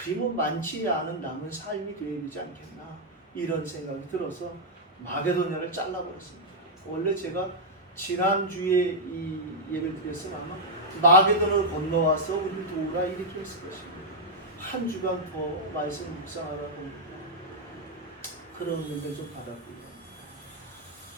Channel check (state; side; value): normal; both; correlation -0.03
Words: 많지 않은 남은 삶이 되어야 되지 않겠나, 이런 생각이 들어서 마게도냐를 잘라버렸습니다. 원래 제가 지난주에 이 예배를 드렸으면 아마 마게도냐를 건너와서 우리를 도우라 이렇게 했을 것입니다. 한 주간 더 말씀 묵상하다 보니까 그런 은혜를 좀 받았고요.